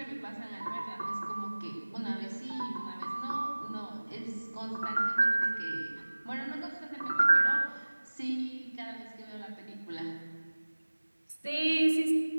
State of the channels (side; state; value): both; inverted; correlation -1.00